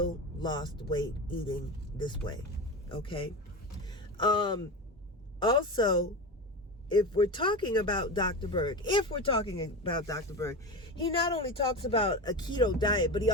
lost weight eating this way. Okay? Also, if we're talking about Dr. Berg, he not only talks about a keto diet, but he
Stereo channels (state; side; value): normal; both; correlation 0.23